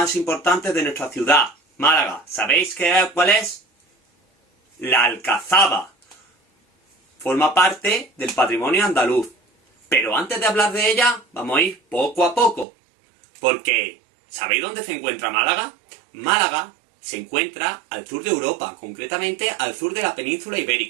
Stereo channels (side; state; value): left; drops out; at 12.7 s